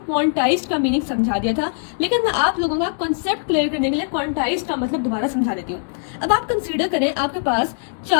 का मीनिंग समझा दिया था, लेकिन मैं आप लोगों का कॉन्सेप्ट क्लियर करने के लिए क्वांटाइज्ड का मतलब दोबारा समझा देती हूँ। अब आप कंसीडर करें, आपके पास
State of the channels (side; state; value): right; silent; digital silence